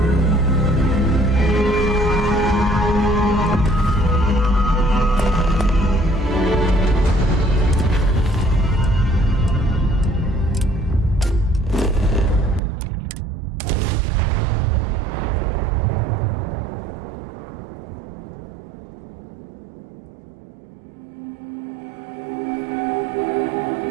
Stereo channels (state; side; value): drops out; left; at 12.6 s